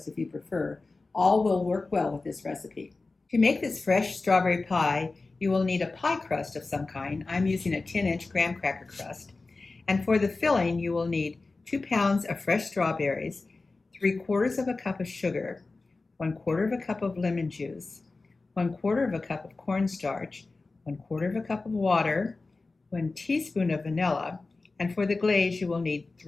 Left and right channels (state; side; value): quieter; right; 3.6 dB